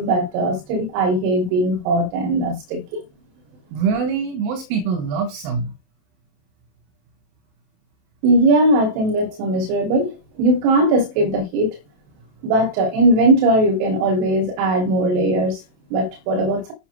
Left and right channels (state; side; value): late; left; 27 ms